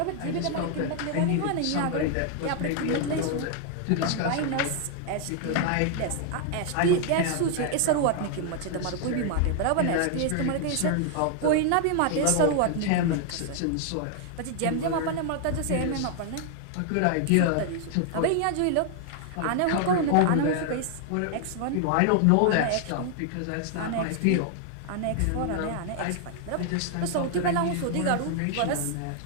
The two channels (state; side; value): different; both; correlation 0.00